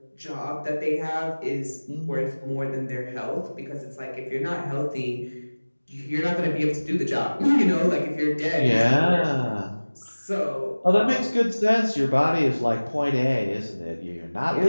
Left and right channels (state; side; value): inverted; both; correlation -1.00